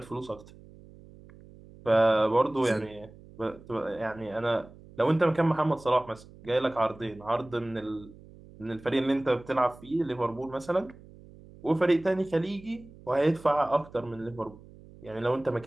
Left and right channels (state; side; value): noise; right; hum, 21 dB below the sound